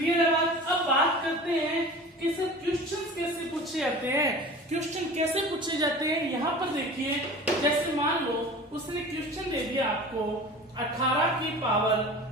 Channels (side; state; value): both; normal; correlation 0.38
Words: है बात। अब बात करते हैं कि सर क्वेश्चंस कैसे पूछे जाते हैं, क्वेश्चन कैसे पूछे जाते हैं। यहाँ पर देखिए, जैसे मान लो उसने क्वेश्चन दे दिया आपको 18 की पावर